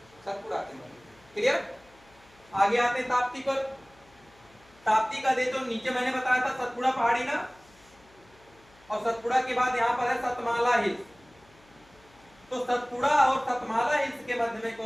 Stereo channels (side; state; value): left; noise; hum, 28 dB below the sound